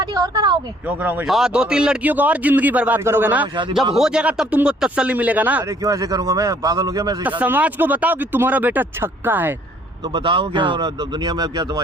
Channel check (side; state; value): both; normal; correlation 0.61